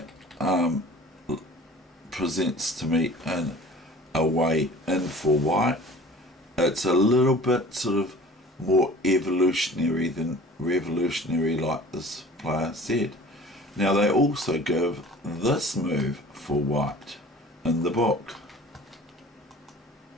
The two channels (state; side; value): normal; both; correlation 0.45